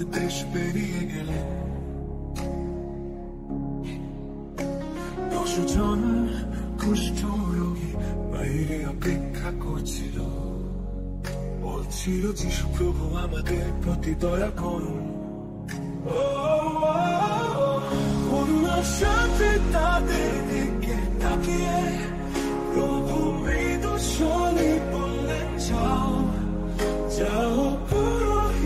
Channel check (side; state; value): both; identical; correlation 1.00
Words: দেশ পেরিয়ে গেলেন, 10 জন কুষ্ঠ রোগী বাইরে অপেক্ষা করছিল, বলছিল যিশু প্রভু আমাদের প্রতি দয়া করুন। করুণার সাথে তাদের দিকে তাকিয়ে প্রভু মৃদু স্বরে বললেন, যাও যাও